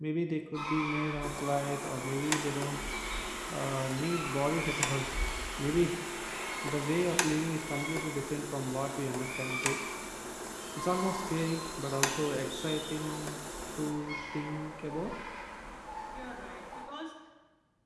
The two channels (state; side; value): identical; both; correlation 1.00